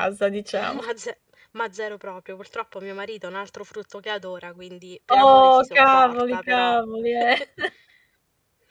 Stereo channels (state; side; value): identical; both; correlation 1.00